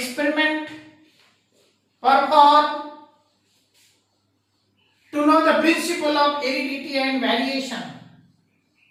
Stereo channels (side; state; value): both; identical; correlation 1.00